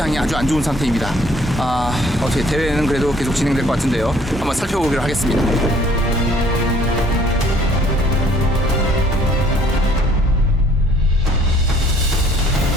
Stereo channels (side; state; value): both; normal; correlation 0.59